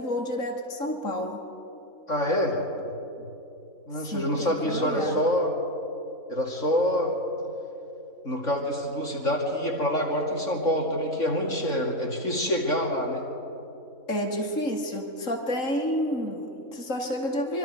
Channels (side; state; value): right; late; 3.6 ms